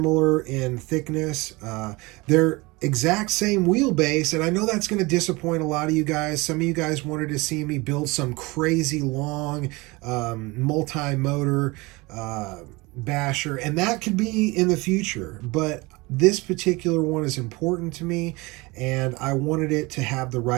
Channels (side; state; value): left; quieter; 24.0 dB